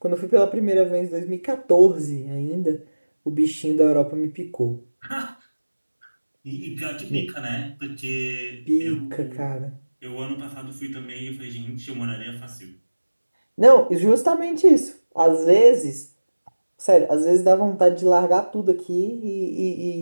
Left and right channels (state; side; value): inverted; both; correlation -1.00